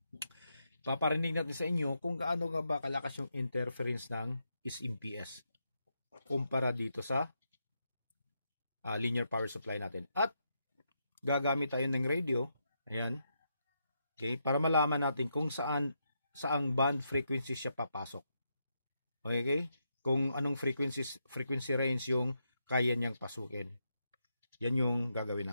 Paparinig natin sa inyo kung gaano nga ba kalakas yung interference ng is MPS kumpara dito sa linear power supply natin. At gagamit tayo ng radio, ayan, okay, para malaman natin kung saang band frequency siya papasok. Okay? Kung anong frequency range yung kaya niyang pasukin. Yan yung gagawin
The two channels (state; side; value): inverted; both; correlation -0.82